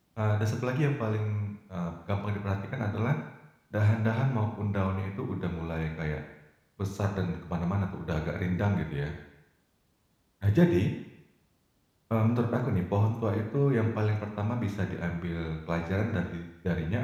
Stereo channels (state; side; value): identical; both; correlation 1.00